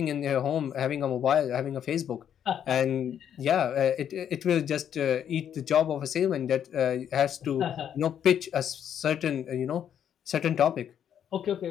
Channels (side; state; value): right; quieter; 9.2 dB